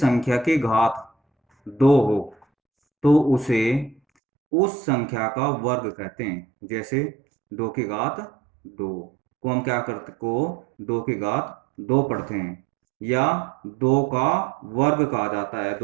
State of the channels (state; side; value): drops out; left; at 4.0 s